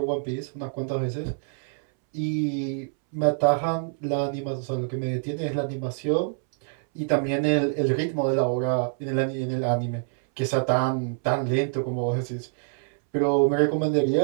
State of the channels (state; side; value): silent; left; 61 dB below the other